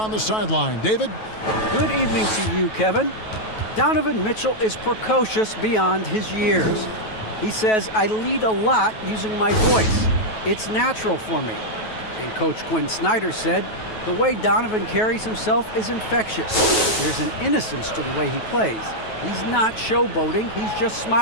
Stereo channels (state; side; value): late; right; 9.2 ms